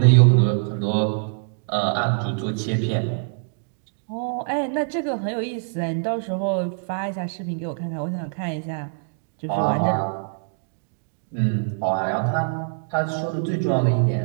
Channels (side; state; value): left; silent; digital silence